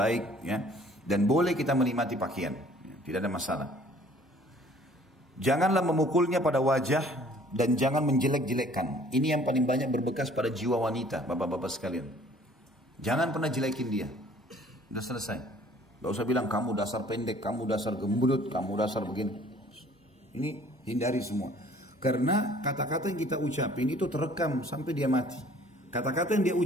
ya. Dan boleh kita menikmati pakaian. Tidak ada masalah. Janganlah memukulnya pada wajah. Dan jangan menjelek-jelekkan. Ini yang paling banyak berbekas pada jiwa wanita, bapak-bapak sekalian. Jangan pernah jelekin dia. Udah selesai. Gak usah bilang kamu dasar pendek, kamu dasar gembut, kamu dasar begini. Ini hindari semua. Karena kata-kata yang kita ucapin itu terekam sampai dia mati. Kata-kata yang dia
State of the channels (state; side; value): normal; both; correlation 0.55